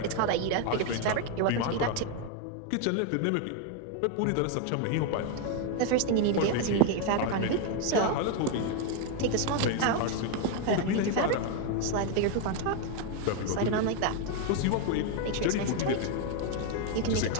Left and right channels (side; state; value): both; different; correlation 0.01